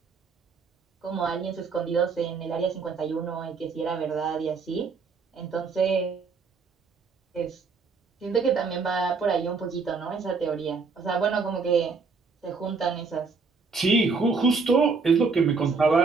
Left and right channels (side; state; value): left; quieter; 4.7 dB